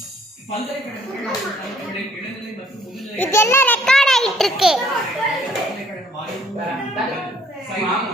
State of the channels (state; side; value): normal; both; correlation 0.63